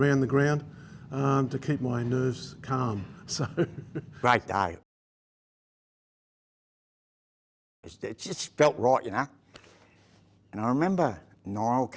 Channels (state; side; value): identical; both; correlation 1.00